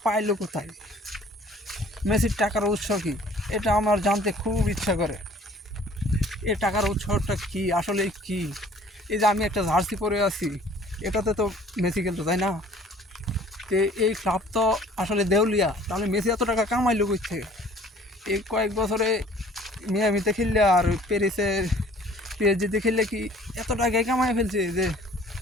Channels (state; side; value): normal; both; correlation 0.53